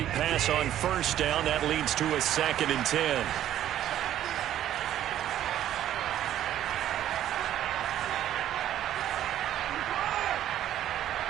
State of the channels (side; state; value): left; quieter; 11.8 dB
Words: pass on 1st down. That leads to a 2nd and 10.